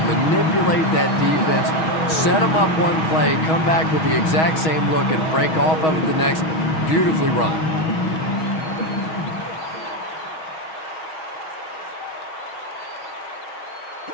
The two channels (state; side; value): late; right; 6.3 ms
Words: that defense, set them up one play, come back with the exact same look, and break off of it the next. Beautifully run.